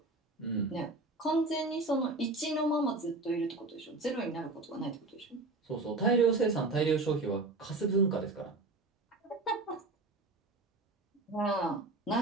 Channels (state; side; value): quieter; left; 3.2 dB